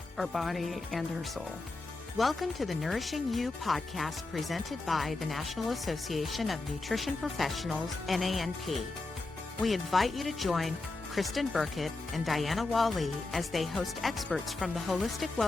our body and our soul. Welcome to the Nourishing You podcast presented by the National Association of Nutrition Professionals, NANP. We invite you to join Kristen Burkett and Diana Wally as they host experts from the holistic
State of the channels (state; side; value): quieter; right; 3.3 dB